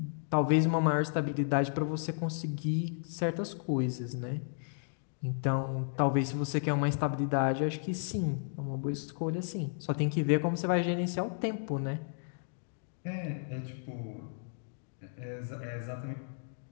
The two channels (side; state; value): right; silent; digital silence